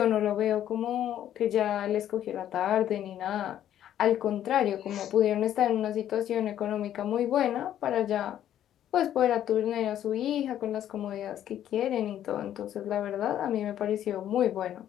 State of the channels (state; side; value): quieter; right; 11.1 dB